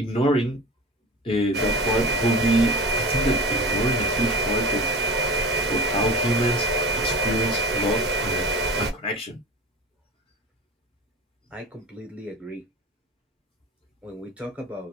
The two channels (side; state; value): both; normal; correlation 0.32